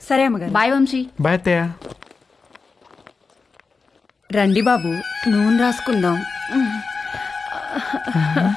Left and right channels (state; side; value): quieter; right; 4.5 dB